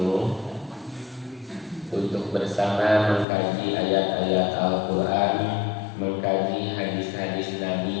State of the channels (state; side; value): drops out; right; at 3.2 s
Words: untuk bersama mengkaji ayat-ayat Al-Quran, mengkaji hadis-hadis